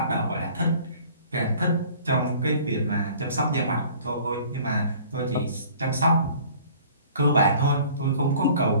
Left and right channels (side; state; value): both; inverted; correlation -0.51